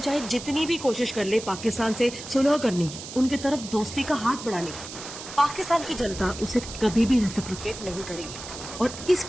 जितनी भी कोशिश कर ले पाकिस्तान से सुलह करने की, उनकी तरफ दोस्ती का हाथ बढ़ाने की, पाकिस्तान की जनता उसे कभी भी रेसिप्रोकेट नहीं करेगी, और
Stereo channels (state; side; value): noise; right; hiss, 11 dB below the sound